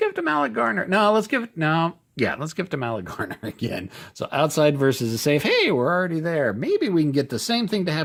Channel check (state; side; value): identical; both; correlation 1.00